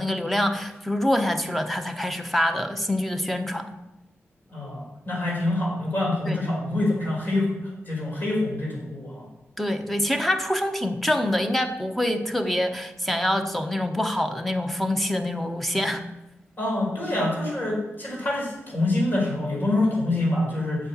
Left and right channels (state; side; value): normal; both; correlation 0.88